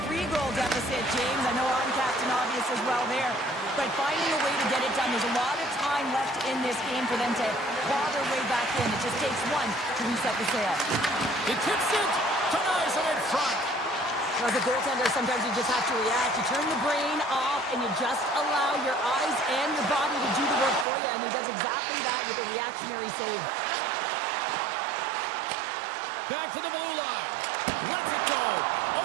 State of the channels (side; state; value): left; drops out; at 20.9 s